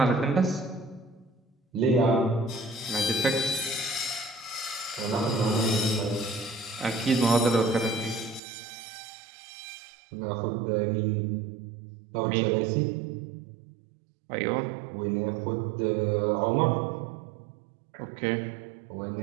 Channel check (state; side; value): drops out; left; at 8.4 s